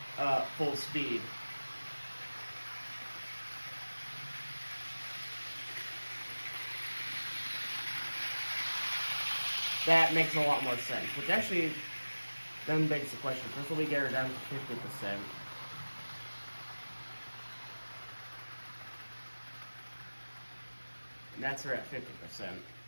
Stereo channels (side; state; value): both; inverted; correlation -1.00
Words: full speed. That makes a lot more sense, which actually then begs the question. First, let me get her down to 50%. And that's her at 50%.